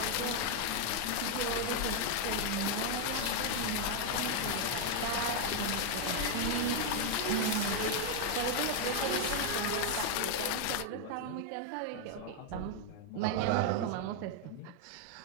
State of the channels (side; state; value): both; different; correlation 0.01